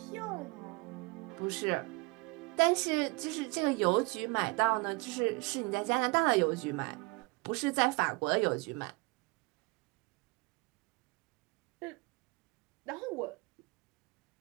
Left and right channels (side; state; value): left; quieter; 28.1 dB